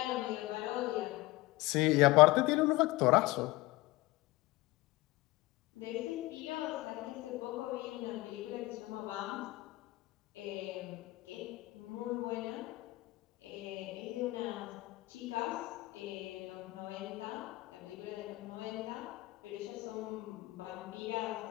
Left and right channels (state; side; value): quieter; right; 20.1 dB